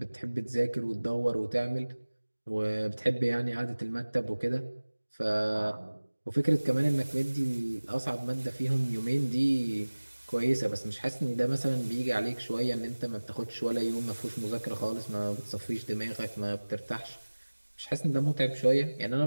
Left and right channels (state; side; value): inverted; both; correlation -1.00